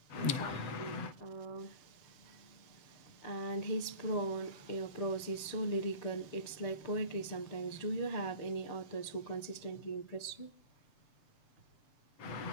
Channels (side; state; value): right; late; 6.8 ms